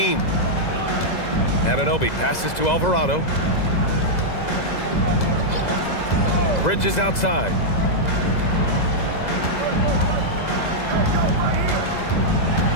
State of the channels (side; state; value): right; late; 2.0 ms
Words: Anunoby passes to Alvarado. Bridges outside.